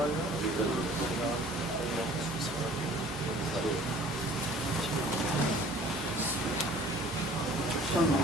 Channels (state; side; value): normal; both; correlation 0.50